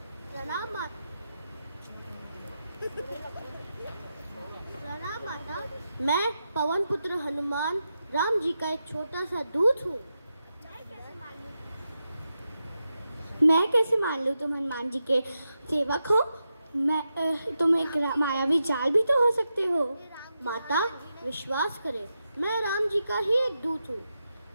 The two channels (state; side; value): inverted; both; correlation -0.88